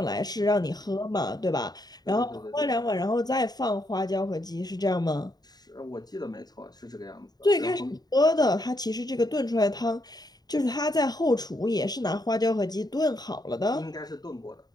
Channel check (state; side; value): late; right; 0.19 ms